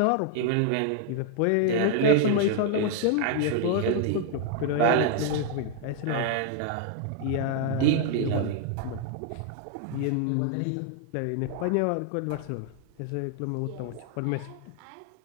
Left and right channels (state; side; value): different; both; correlation 0.00